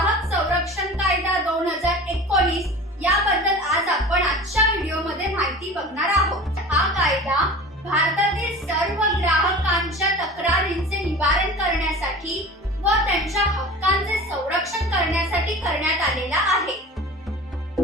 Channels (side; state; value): both; normal; correlation 0.37